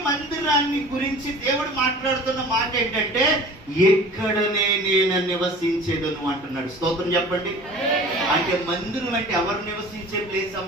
మందిరాన్ని గురించి దేవుడు మాట్లాడుతున్న మాట ఏంటంటే ఎక్కడనే నేను నివసించేదను అంటున్నాడు. స్తోత్రం చెప్పండి. అంటే మందిరం అంటే ఎవరు నివసించే ప్లేస్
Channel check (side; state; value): both; normal; correlation 0.42